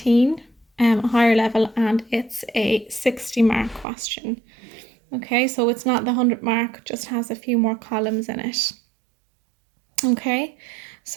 a higher level, and it's a 60 mark question. Okay, so it's not the 100 mark, just has a few more columns in it. Okay,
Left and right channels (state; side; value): drops out; left; at 3.9 s